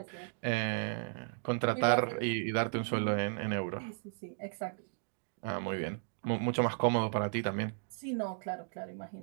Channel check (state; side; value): silent; left; digital silence